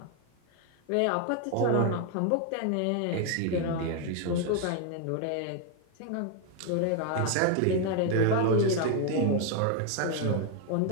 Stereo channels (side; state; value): both; different; correlation 0.01